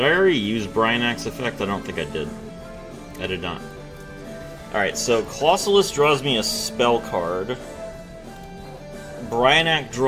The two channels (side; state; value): both; identical; correlation 1.00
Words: I already use Bryanac's effect? I don't think I did. I did not. Alright, so Colossalus draws me a spell card. Bryanak